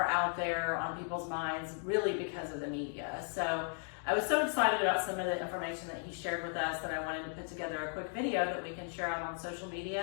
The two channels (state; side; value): silent; right; 54 dB below the other